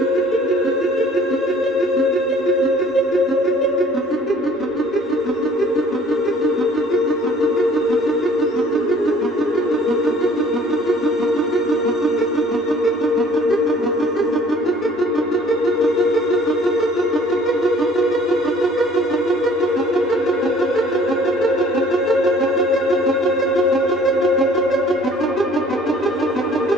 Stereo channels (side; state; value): both; normal; correlation 0.54